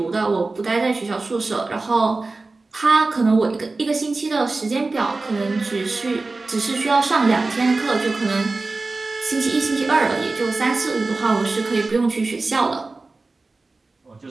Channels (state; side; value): quieter; left; 3.5 dB